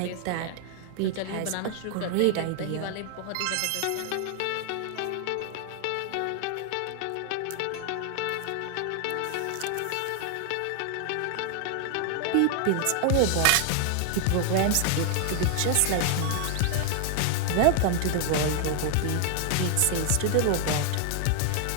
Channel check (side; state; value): both; different; correlation 0.00